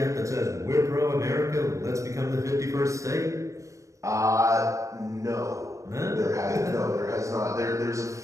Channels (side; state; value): left; late; 0.15 ms